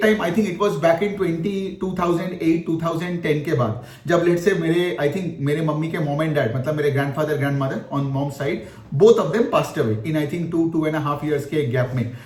time I think it was back in 2008-2010 के बाद, जब late से मेरे mummy के मॉम एंड डैड, मतलब मेरे grandfather grandmother on mom side, both of them passed away in I think 2.5 years के गैप में,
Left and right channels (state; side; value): identical; both; correlation 1.00